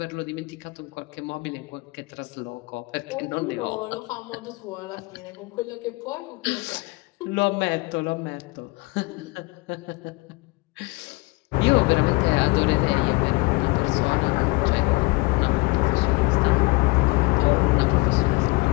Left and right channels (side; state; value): right; quieter; 25.3 dB